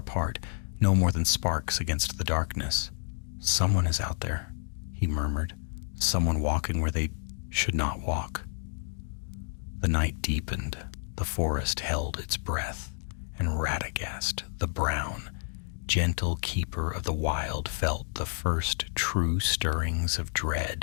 no more than sparks against the darkness. "Someone is out there," he murmured, "someone walking where they should not walk." The night deepened, the forest held its breath, and Radagast, the brown, gentle keeper of the wild, felt the first true stirrings of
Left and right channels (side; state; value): right; silent; digital silence